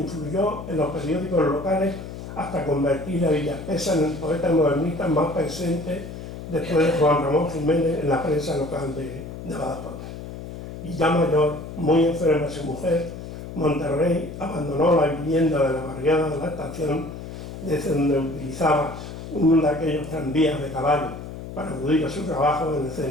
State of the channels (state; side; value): noise; left; hum, 10 dB below the sound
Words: en los periódicos locales hasta convertir a Villaspesa en el poeta modernista más presente después de Juan Ramón Jiménez en la prensa local de Badajoz. Y ya mayor, muy enferma su mujer, Monterrey abandonó la vivienda de la barriada de la estación, desde donde utilizaba uno de aquellos tranvías de caballo para acudir a su trabajo en el